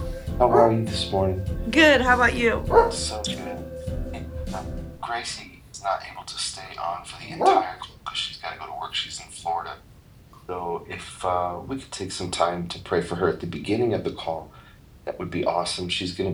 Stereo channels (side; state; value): both; identical; correlation 1.00